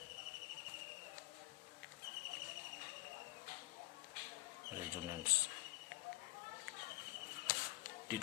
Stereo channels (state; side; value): quieter; right; 20.0 dB